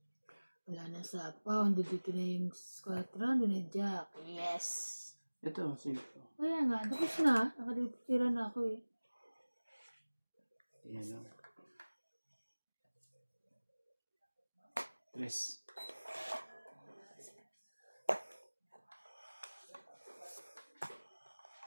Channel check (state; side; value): inverted; both; correlation -1.00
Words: Wala na sa pound. Dito na yung squadron. Doon na yung jack. Yes! Ito, safe ko. Kaya nga, tapos na. Nakadipira na ako eh. Yan lang. 3.